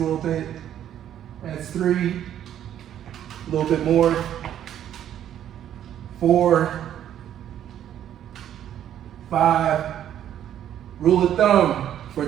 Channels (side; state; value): left; quieter; 10.7 dB